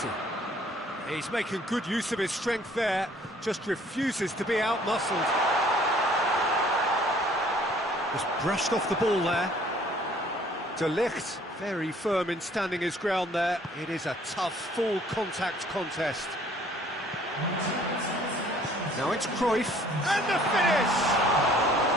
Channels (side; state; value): both; normal; correlation 0.57